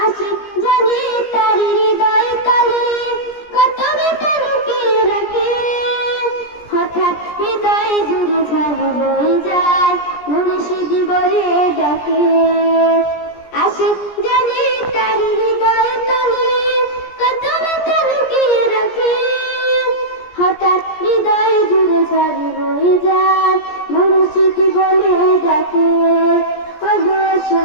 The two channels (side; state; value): right; late; 17 ms